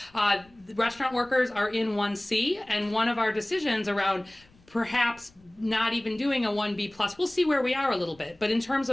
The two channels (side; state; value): left; noise; rumble, 29 dB below the sound